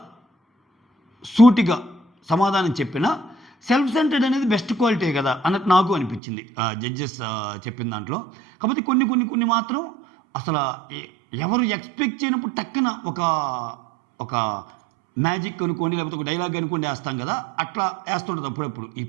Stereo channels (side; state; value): left; drops out; at 6.2 s